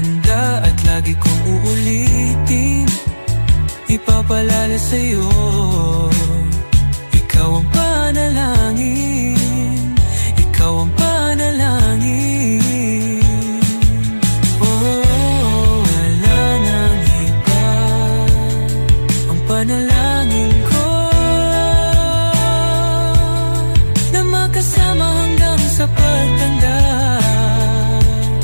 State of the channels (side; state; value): both; inverted; correlation -1.00